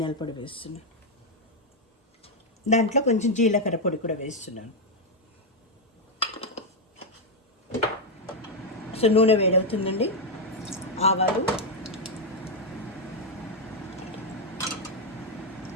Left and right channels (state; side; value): normal; both; correlation 0.02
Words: పొడి వేస్తున్నాను. దాంట్లో కొంచెం జీలకర్ర పొడి కూడా వేస్తున్నాను. సో నూనె వేడవుతుందండి. ఆవాలు,